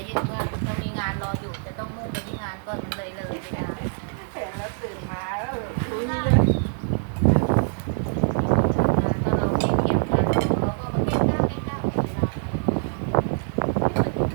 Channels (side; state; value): left; silent; 62 dB below the other